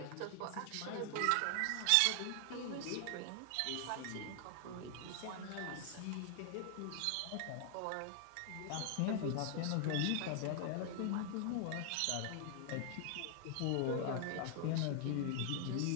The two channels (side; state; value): both; different; correlation 0.00